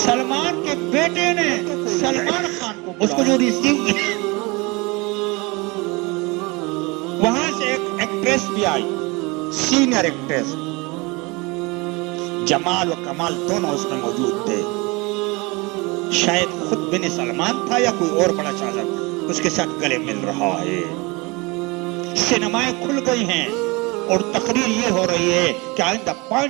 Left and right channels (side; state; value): left; quieter; 25.9 dB